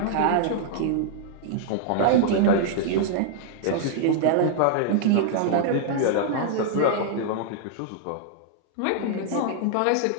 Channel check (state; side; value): different; both; correlation -0.01